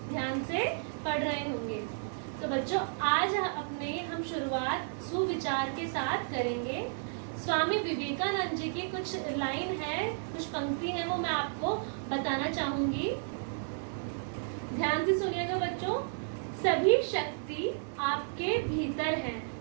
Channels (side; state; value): left; silent; digital silence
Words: ध्यान से पढ़ रहे होंगे। तो बच्चों आज हम शुरुआत सुविचार के साथ करेंगे। स्वामी विवेकानंद जी की कुछ लाइन है, कुछ पंक्ति है, वो मैं आपको बताना चाहूंगी। ध्यान से सुनिएगा बच्चों। सभी शक्ति आपके भीतर है,